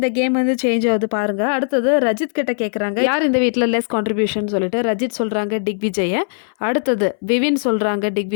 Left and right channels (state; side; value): silent; right; 61 dB below the other